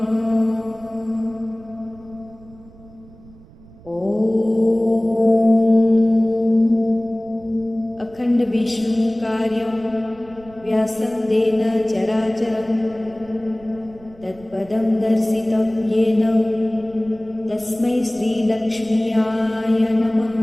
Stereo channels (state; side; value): noise; right; rumble, 23 dB below the sound